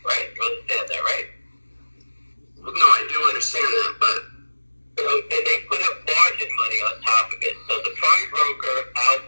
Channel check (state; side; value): inverted; both; correlation -1.00